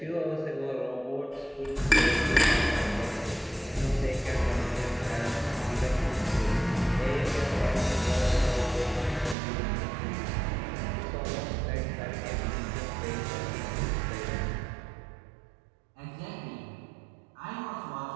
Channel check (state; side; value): drops out; left; at 9.3 s